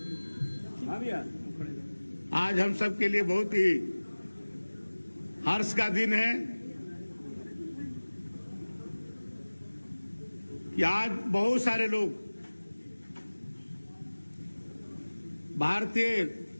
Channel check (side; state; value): both; inverted; correlation -1.00